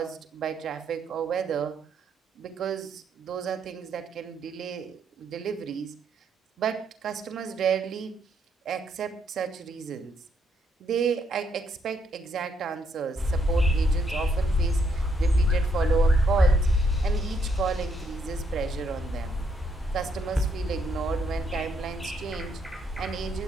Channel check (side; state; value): both; normal; correlation 0.73